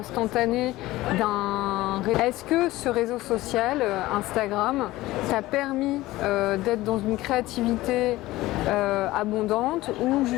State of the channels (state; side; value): quieter; right; 17.7 dB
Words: Est-ce que ce réseau social, Instagram, t'a permis d'être dans une créativité abondante ou